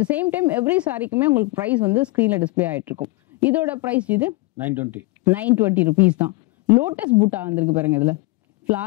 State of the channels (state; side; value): quieter; right; 22.8 dB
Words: the same time every சாரிக்குமே உங்களுக்கு பிரைஸ் வந்து ஸ்கிரீன்ல டிஸ்பிளே ஆயிட்டு இருக்கும். இதோட பிரைஸ் இது 920 rupees தான். லோட்டஸ் பூட்டா வந்திருக்கு பாருங்க. இதுல